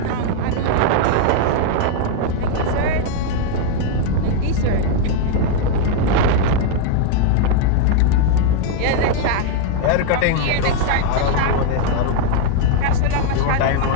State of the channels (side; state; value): both; different; correlation 0.00